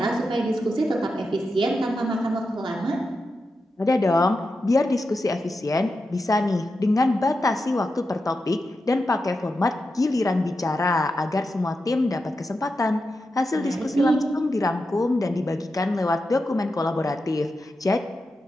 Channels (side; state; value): both; normal; correlation 0.89